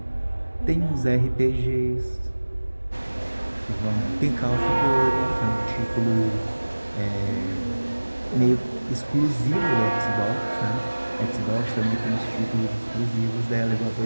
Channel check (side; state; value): both; inverted; correlation -1.00